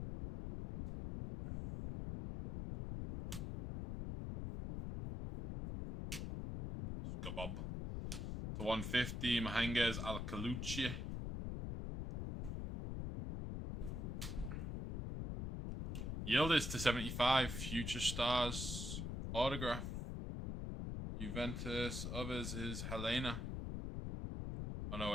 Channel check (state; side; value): noise; left; rumble, 3 dB below the sound